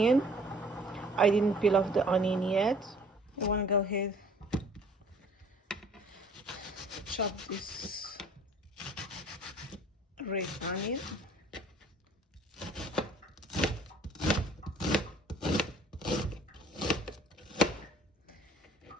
I didn't peel off the onion yet. I wanna go ahead chop this red onion.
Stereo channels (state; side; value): normal; both; correlation 0.53